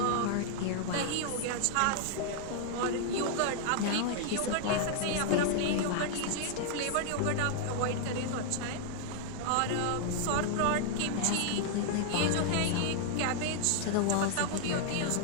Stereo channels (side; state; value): both; different; correlation 0.00